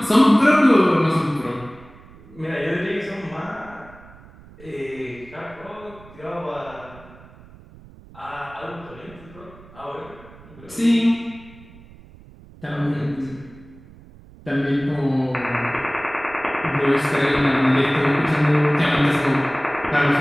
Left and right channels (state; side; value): noise; right; rumble, 22 dB below the sound